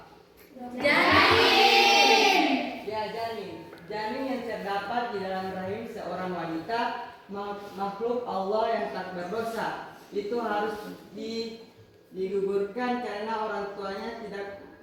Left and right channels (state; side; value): identical; both; correlation 1.00